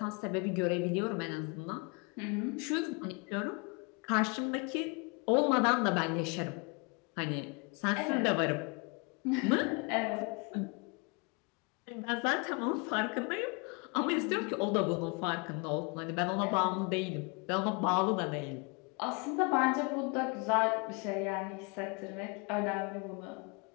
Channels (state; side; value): quieter; right; 31.0 dB